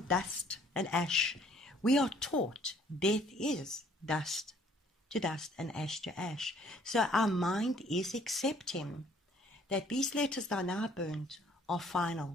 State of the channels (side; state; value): both; normal; correlation 0.59